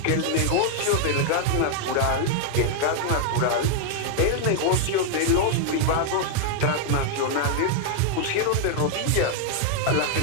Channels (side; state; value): both; different; correlation 0.00